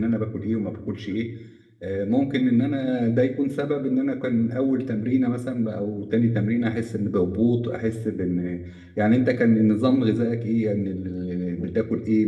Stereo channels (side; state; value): both; identical; correlation 1.00